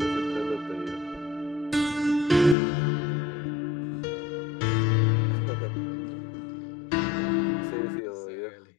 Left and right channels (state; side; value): drops out; right; at 2.6 s